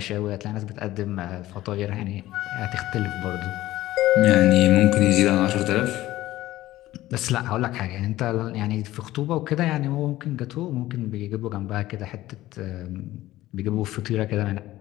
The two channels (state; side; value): quieter; right; 15.8 dB